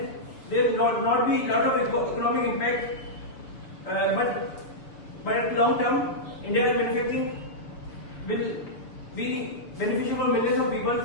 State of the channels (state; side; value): late; right; 6.9 ms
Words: there will not be a lot of economic impact. But at long term, India's manufacturing will be beneficial for millions of people